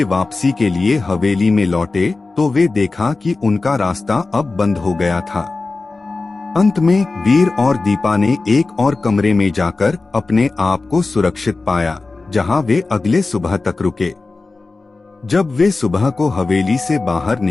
वापसी के लिए हवेली में लौटे तो वे देखा कि उनका रास्ता अब बंद हो गया था। अंत में वीर और दीपा ने एक और कमरे में जाकर अपने आप को सुरक्षित पाया, जहां वे अगले सुबह तक रुके। जब वे सुबह को हवेली से बाहर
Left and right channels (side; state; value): right; quieter; 3.6 dB